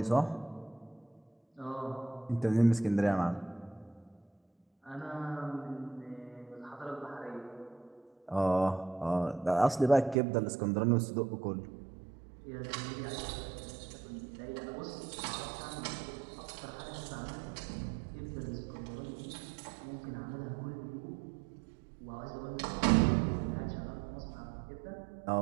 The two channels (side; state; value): left; drops out; at 10.2 s